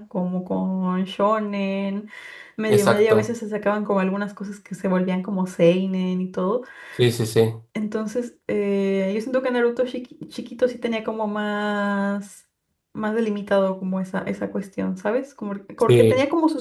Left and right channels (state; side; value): identical; both; correlation 1.00